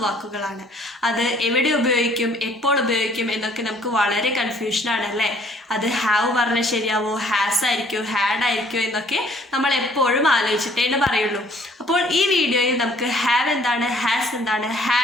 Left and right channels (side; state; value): both; normal; correlation 0.59